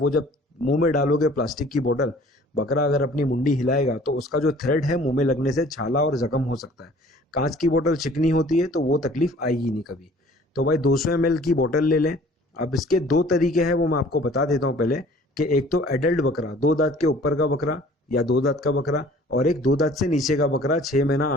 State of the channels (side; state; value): both; normal; correlation 0.51